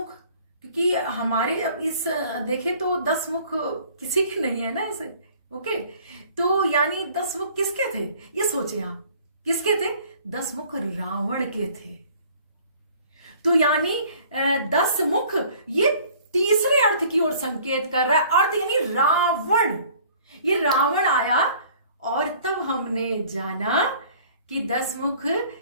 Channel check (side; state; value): both; inverted; correlation -0.53